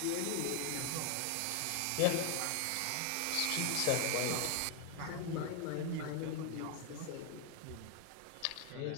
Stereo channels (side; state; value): both; different; correlation 0.01